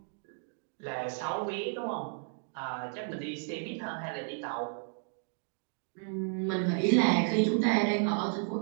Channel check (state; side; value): silent; left; 56 dB below the other